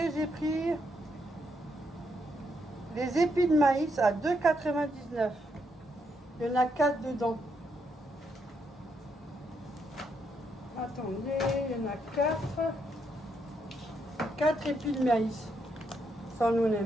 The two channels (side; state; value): both; normal; correlation 0.78